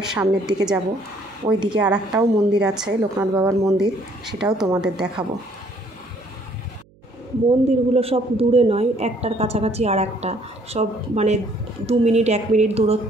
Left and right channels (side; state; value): right; noise; hum, 30 dB below the sound